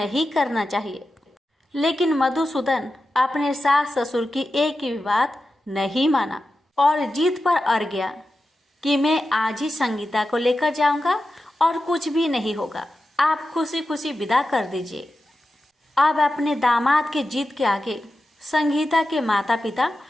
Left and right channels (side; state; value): both; normal; correlation 0.91